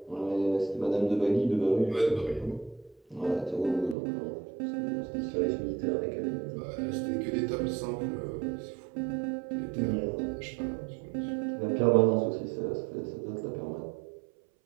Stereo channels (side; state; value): left; drops out; at 4.0 s